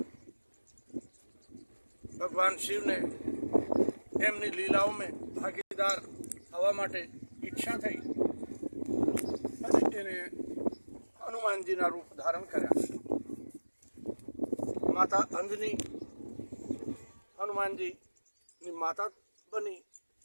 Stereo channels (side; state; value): both; inverted; correlation -1.00